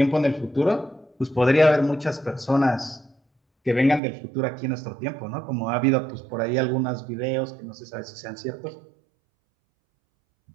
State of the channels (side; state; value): left; drops out; at 4.0 s